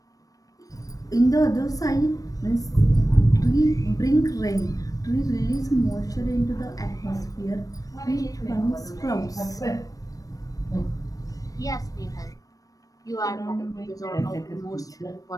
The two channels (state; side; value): late; right; 0.17 ms